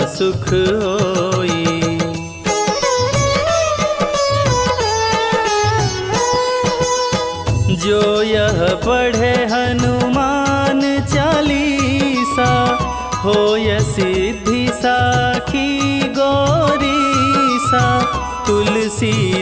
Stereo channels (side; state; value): both; identical; correlation 1.00